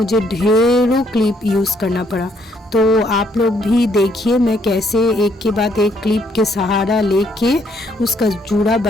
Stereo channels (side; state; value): both; normal; correlation 0.69